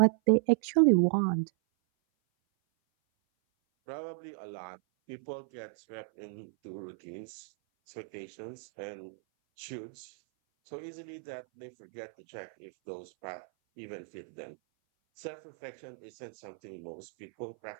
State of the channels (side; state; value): left; silent; 55 dB below the other